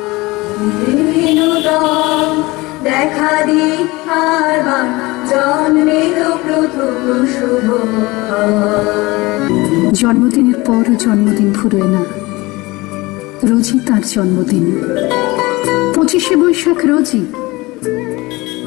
দেখা দি আর জন্মের প্রথম শুভ জন্মদিনের পরও জন্মদিন ফুরোয় না রোজই তার জন্মদিন। 25শে বৈশাখ রোজই,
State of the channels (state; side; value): quieter; right; 22.1 dB